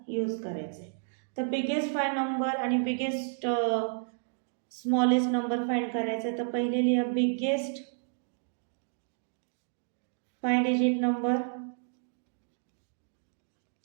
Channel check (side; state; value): left; silent; digital silence